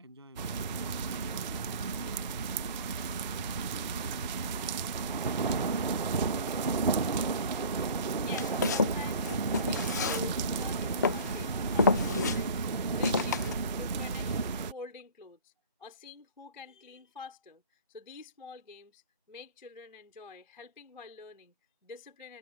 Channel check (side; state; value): both; inverted; correlation -0.43